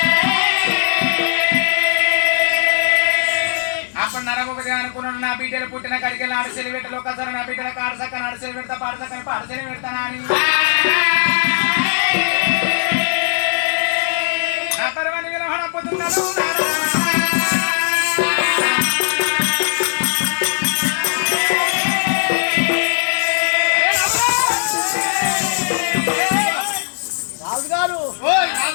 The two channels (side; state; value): right; silent; digital silence